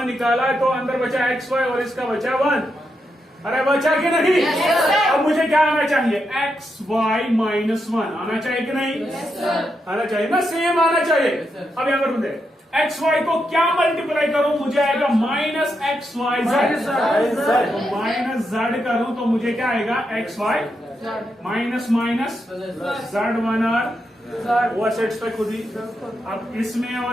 निकाला है तो अंदर बचा XY और इसका बचा 1। अरे बचा कि नहीं? अब मुझे क्या आना चाहिए? XY -1 आना चाहिए कि नहीं? आना चाहिए ना, सेम आना चाहिए। अब यहाँ पर बोलते XY को क्या मल्टीप्लाई करूं? मुझे आएगा माइनस XYZ। माइनस Z करूं तो मुझे क्या आएगा? XY माइनस माइनस Z1 और वो सेट्स पे खुद ही। अब इसमें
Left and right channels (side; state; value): both; normal; correlation 0.83